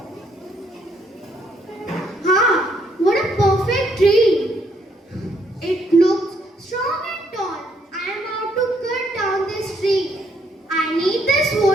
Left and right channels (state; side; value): normal; both; correlation 0.70